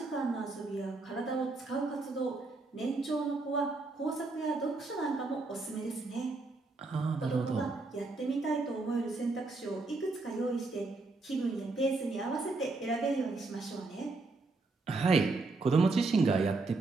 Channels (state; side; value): quieter; left; 3.5 dB